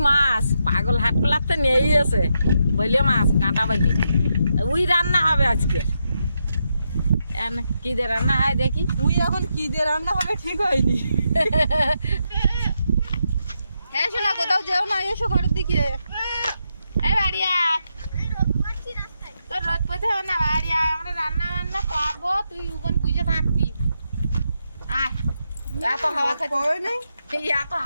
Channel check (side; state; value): both; inverted; correlation -0.83